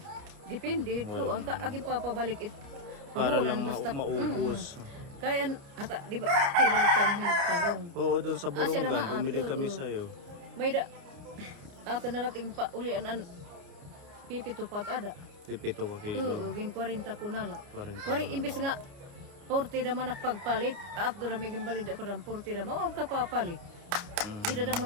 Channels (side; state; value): left; late; 29 ms